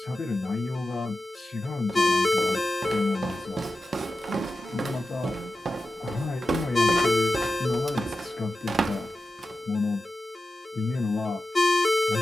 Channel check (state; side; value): normal; both; correlation 0.92